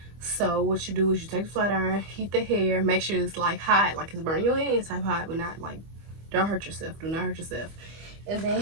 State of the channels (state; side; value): late; left; 25 ms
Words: So what you do is you take the flat iron, heat the hair, make sure it's like hot, like it's burning your hands type hot, but not like, don't hurt yourself. Do not hurt yourself. And